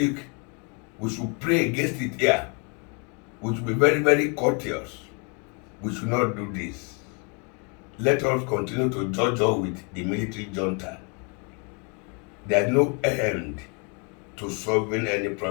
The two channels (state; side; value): quieter; right; 35.2 dB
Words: we should pray against it here. We should be very, very courteous. We should not do this. Let us continue to judge with the military junta. There is no end to solving any